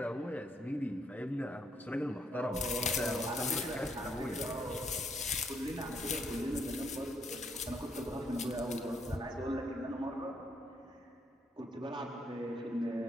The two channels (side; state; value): both; normal; correlation 0.74